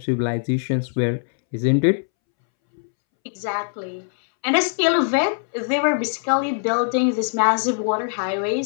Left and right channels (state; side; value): silent; right; 64 dB below the other